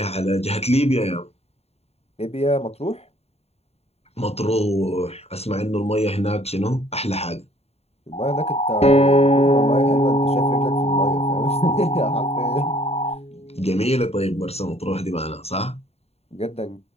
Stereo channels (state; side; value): late; right; 0.30 ms